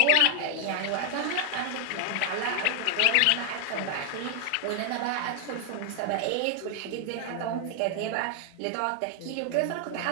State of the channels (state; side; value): different; both; correlation 0.00